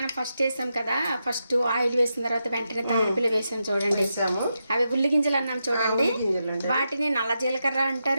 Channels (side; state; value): both; inverted; correlation -0.86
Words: ఫస్ట్ వేసాం కదా, ఫస్ట్ ఆయిల్ వేసిన తర్వాత వెంటనే తాలింపులు వేసాం చూడండి. అవి ఉల్లి గింజలు అన్నాం చూడండి, వాటిని నల్ల జీలకర్ర